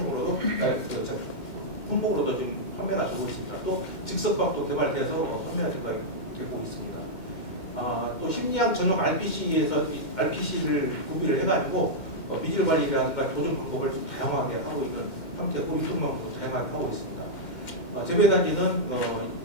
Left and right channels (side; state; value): right; late; 2.1 ms